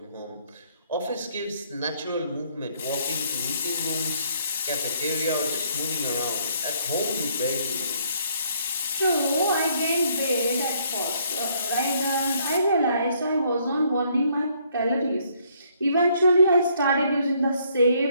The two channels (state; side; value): inverted; both; correlation -0.67